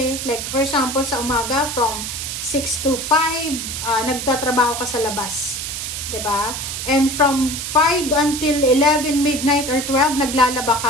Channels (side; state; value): right; noise; hiss, 5 dB below the sound